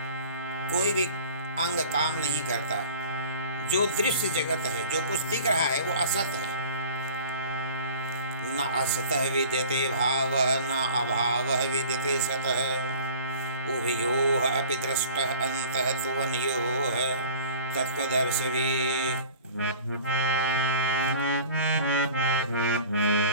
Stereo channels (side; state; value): both; inverted; correlation -0.44